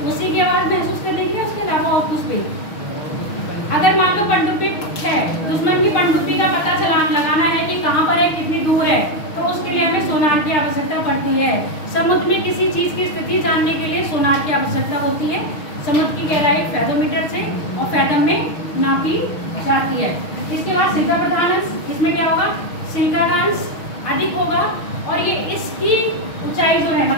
उसी की आवाज महसूस करने के लिए, उसके अलावा और कुछ भी। अगर मान लो पनडुब्बी है, दुश्मन की पनडुब्बी का पता लगाना है कि कहाँ पर है, कितनी दूर है, तो उसके लिए हमें सोनार की आवश्यकता पड़ती है। समुद्र में किसी चीज की स्थिति जानने के लिए सोनार की आवश्यकता होती है। समुद्र की गहराई फैथोमीटर से और फैथम में नापी जाती है। इसके बाद सिलिका प्रधान अंश, इसमें क्या होगा, सिलिका का अंश अधिक होगा और ये इसकी ऊंचाई जो है,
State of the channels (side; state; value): right; late; 6.3 ms